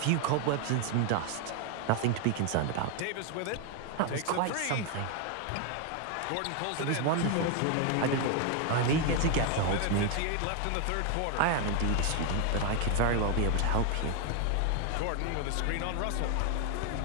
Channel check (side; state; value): both; different; correlation 0.01